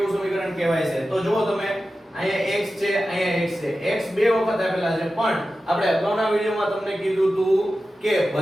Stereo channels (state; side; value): normal; both; correlation 0.93